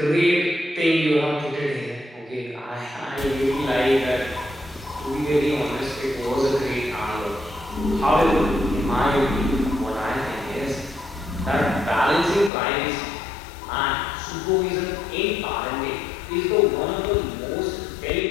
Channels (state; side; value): drops out; right; at 12.5 s